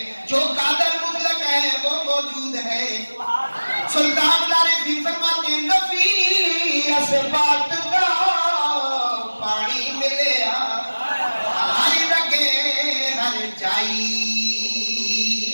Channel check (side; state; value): both; inverted; correlation -1.00